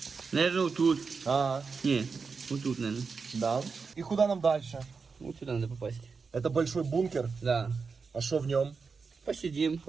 Наверное, вот тут. Не, вот тут, наверное. Да. И куда нам дальше? Вот сюда надо попасть. Это большой бункер. Да. А что в нем? Посидим,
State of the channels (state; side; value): quieter; left; 5.0 dB